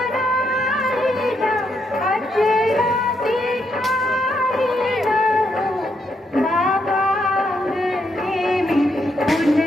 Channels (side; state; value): both; normal; correlation 0.77